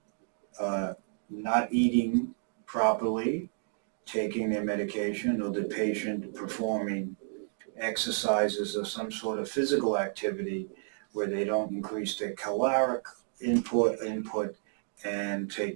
not eating properly, taking their medication, or the patient performing exercises or some sort of physical activity where they don't increase their caloric input and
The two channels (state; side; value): silent; left; digital silence